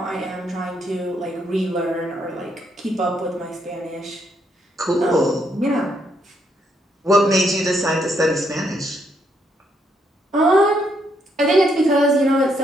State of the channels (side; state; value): both; normal; correlation 0.75